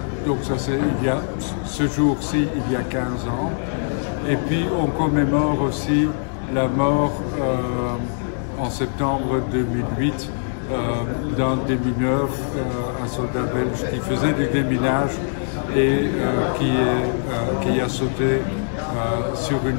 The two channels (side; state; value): right; silent; digital silence